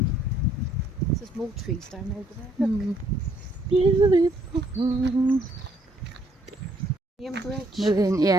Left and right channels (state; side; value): normal; both; correlation 0.67